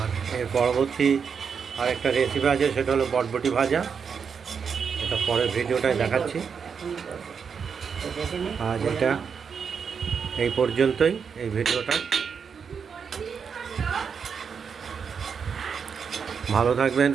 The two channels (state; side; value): quieter; left; 6.4 dB